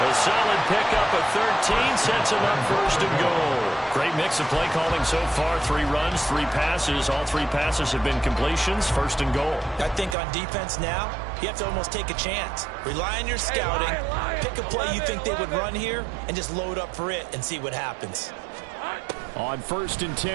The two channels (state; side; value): drops out; left; at 10.2 s